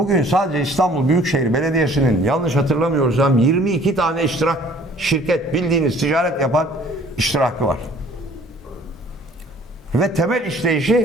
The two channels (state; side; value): normal; both; correlation 0.54